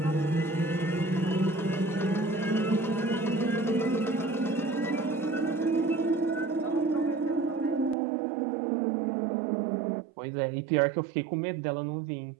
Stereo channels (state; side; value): drops out; left; at 8.0 s